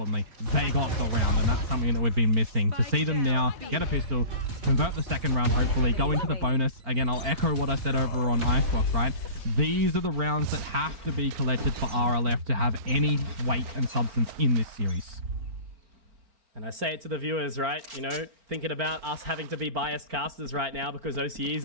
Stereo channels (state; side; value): late; left; 4.4 ms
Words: they got the round, and that's something that we've been missing. To see them now get a pistol, convert the second round, hopefully, go into the bonus. Again, I'll echo what I said over on Icebox, right? These are the rounds that have to be collected for RLF to have any weight and substance in this series. And I say it to the viewers, right? You know, thinking about us having to be biased casters right now because OCE is